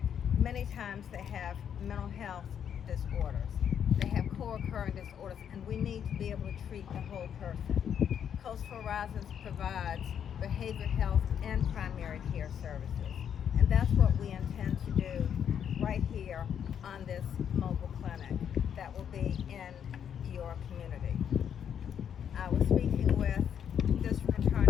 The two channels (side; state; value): right; quieter; 8.5 dB